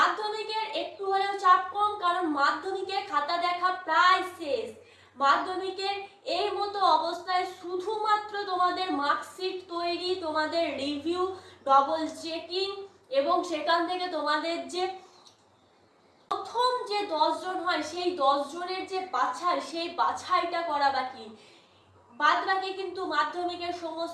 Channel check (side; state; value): both; identical; correlation 1.00